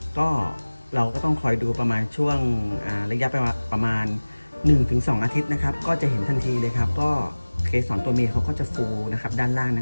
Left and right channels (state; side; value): inverted; both; correlation -1.00